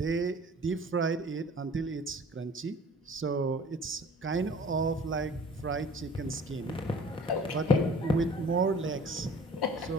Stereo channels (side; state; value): both; normal; correlation 0.48